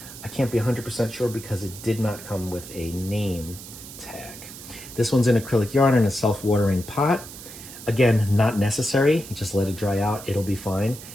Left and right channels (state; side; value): noise; right; hiss, 14 dB below the sound